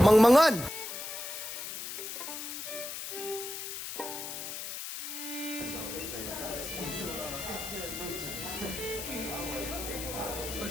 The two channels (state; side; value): noise; left; hiss, 7 dB below the sound